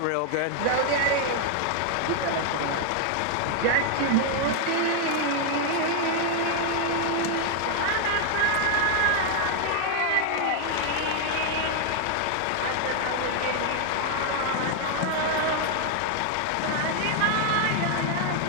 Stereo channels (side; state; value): both; different; correlation 0.00